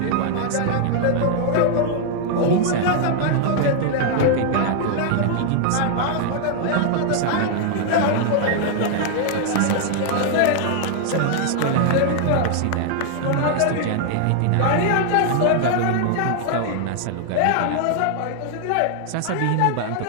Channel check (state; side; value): different; both; correlation 0.00